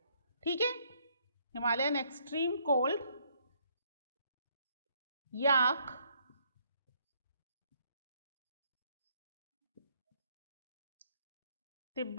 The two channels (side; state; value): both; inverted; correlation -0.69